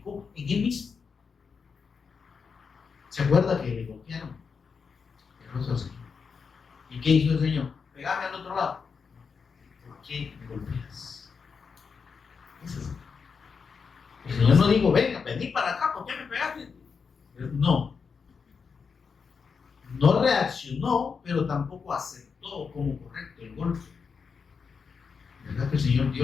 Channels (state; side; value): quieter; right; 5.6 dB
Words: en Él mismo. ¿Se acuerda que le golpearon el rostro al Señor? ¿Y qué hizo el Señor? Pegame al otro lado. ¿Por qué me golpeas? Eso es. El Señor no dijo, venga, vení para acá, ¿por qué me pegaste? No. No reaccionó, pero tampoco aceptó como correcto el golpe. ¿Verdad que el Señor